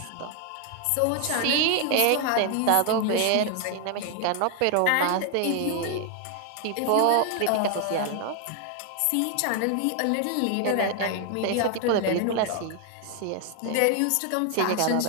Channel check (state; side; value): different; both; correlation 0.00